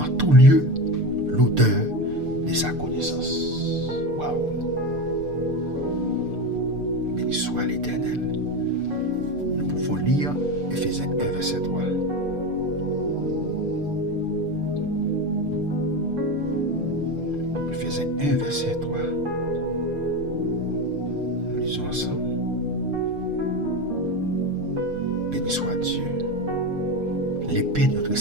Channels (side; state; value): left; late; 6.7 ms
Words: tout lieu l'odeur de sa connaissance. Waouh! Béni soit l'Éternel. Nous pouvons lire Éphésiens 1, verset 3. Éphésiens 1, verset 3. Nous lisons ensemble. Béni soit Dieu, l'épée de notre